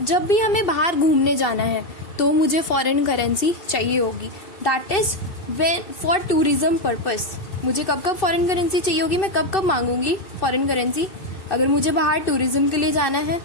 जब भी हमें बाहर घूमने जाना है तो मुझे फॉरेन करेंसी चाहिए होगी. That is when for tourism purpose. मुझे कब कब फॉरेन करेंसी चाहिए होगी, मैं कब कब मांगूंगी फॉरेन करेंसी अगर मुझे बाहर टूरिज्म के लिए जाना है.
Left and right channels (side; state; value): right; late; 2.6 ms